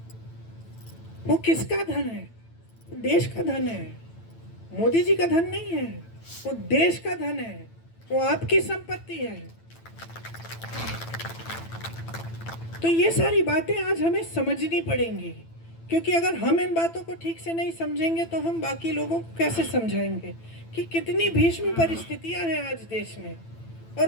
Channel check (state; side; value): late; right; 9.0 ms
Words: वो किसका धन है, देश का धन है, मोदी जी का धन नहीं है, वो देश का धन है, वो आपकी संपत्ति है। तो ये सारी बातें आज हमें समझनी पड़ेंगी, क्योंकि अगर हम इन बातों को ठीक से नहीं समझेंगे तो हम बाकी लोगों को कैसे समझाएंगे कि कितनी भीषण परिस्थितियां हैं आज देश में,